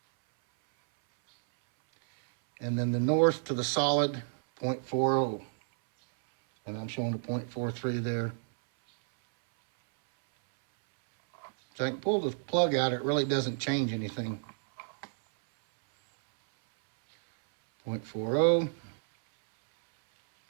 And then the north to the solid, 0.40. And I'm showing a 0.43 there. So I can pull the plug out, it really doesn't change anything. 0.40,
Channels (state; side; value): silent; left; 58 dB below the other